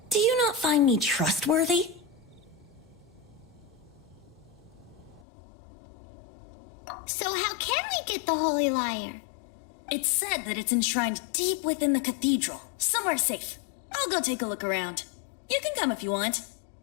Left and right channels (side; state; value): right; drops out; at 5.2 s